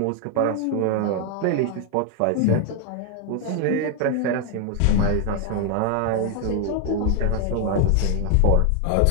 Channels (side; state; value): both; different; correlation 0.00